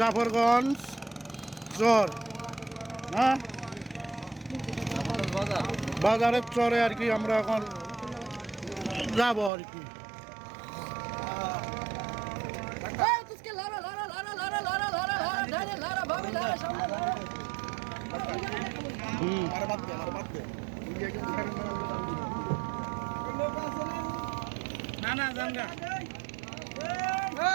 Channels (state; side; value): drops out; left; at 9.5 s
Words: জাফরগঞ্জ চর, হ্যাঁ বাজারের চরে আর কি আমরা এখন যাবো আর কি। না না জানগা